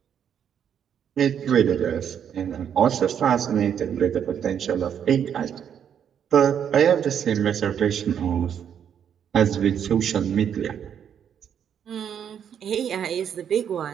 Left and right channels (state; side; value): quieter; left; 8.6 dB